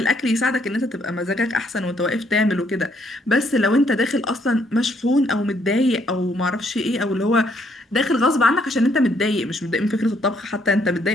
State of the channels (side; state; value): both; normal; correlation 0.70